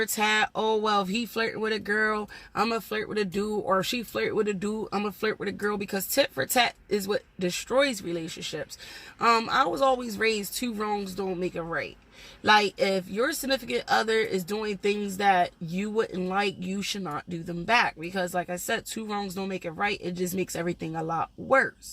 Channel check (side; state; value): both; identical; correlation 1.00